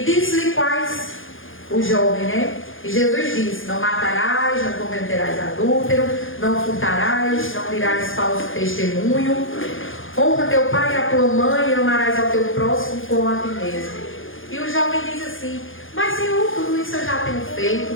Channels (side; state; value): right; late; 0.58 ms